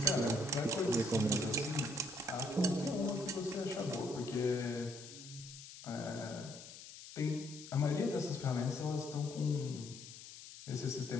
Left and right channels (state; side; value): noise; left; hiss, 14 dB below the sound